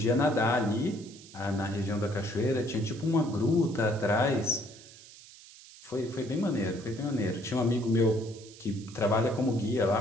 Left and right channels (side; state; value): right; noise; hiss, 20 dB below the sound